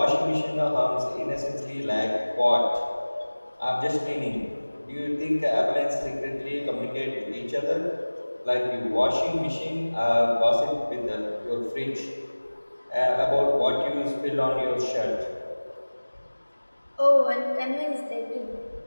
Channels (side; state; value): both; inverted; correlation -1.00